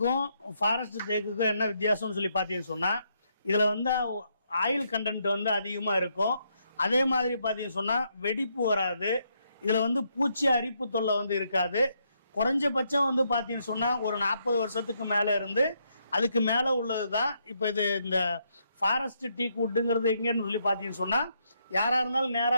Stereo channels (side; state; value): both; inverted; correlation -0.76